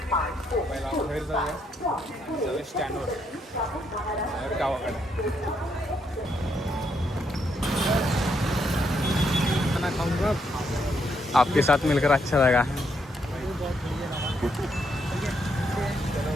पहिला बाहेर जाऊया आणि जाऊया स्टँडवर गावाकडे. आपके साथ मिलकर अच्छा लगा.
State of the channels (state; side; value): normal; both; correlation 0.76